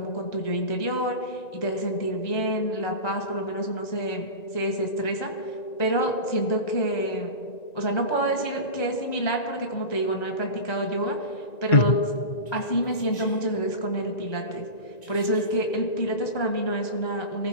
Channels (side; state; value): right; late; 1.9 ms